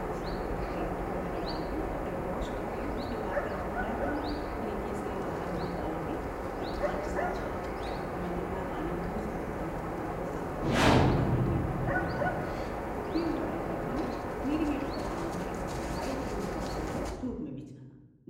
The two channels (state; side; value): identical; both; correlation 1.00